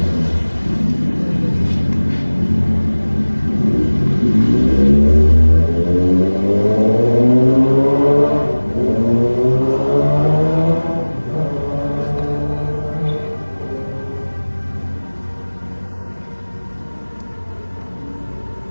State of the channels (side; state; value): both; inverted; correlation -1.00